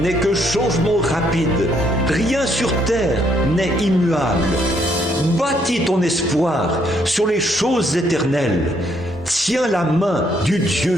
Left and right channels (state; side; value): normal; both; correlation 0.70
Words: n'est que changement rapide, rien sur terre n'est immuable. Bâtis ton espoir sur les choses éternelles, tiens la main du Dieu